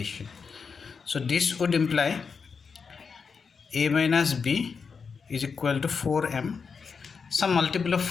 So this would imply A minus B is equal to 4M, some multiple of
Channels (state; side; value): quieter; right; 5.6 dB